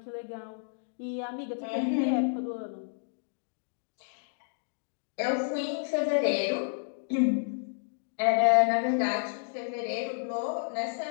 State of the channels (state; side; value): silent; right; digital silence